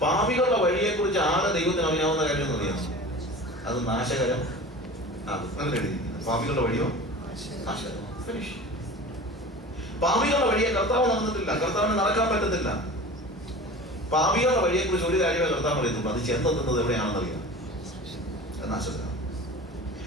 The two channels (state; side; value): normal; both; correlation 0.37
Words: പാപികളുടെ വഴിയെ കുറിച്ച് ആകെ ദൈവത്തിന് അറിയാവുന്ന കാര്യം എന്ന് അറിയാം, അത് നാശകരം. പാപികളുടെ വഴിയോ നാശകരം. പാപികളുടെ വഴിയെ കർത്താവ് നടന്നിട്ടില്ല, കർത്താവിന് നടക്കാൻ പറ്റത്തില്ല. പാപികളുടെ വഴിയെക്കുറിച്ച് ഒരു കാര്യമേ കർത്താവ് പറയുന്നുള്ളൂ, അത് ചെന്നെത്തുന്നത് എവിടെയാണെന്നറിയാം എന്നാ ശ്രദ്ധ.